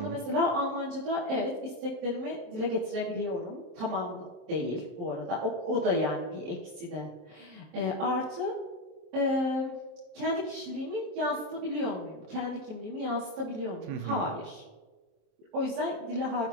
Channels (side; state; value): left; late; 27 ms